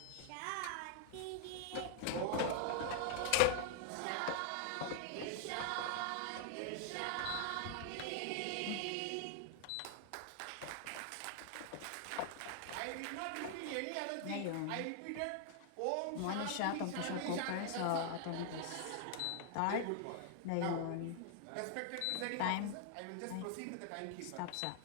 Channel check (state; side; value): different; both; correlation 0.00